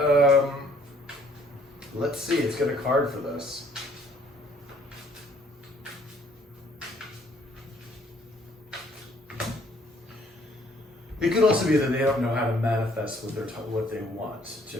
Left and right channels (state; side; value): normal; both; correlation 0.62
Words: let's see, let's get a card for this. It could also be that they don't know how to manifest what they want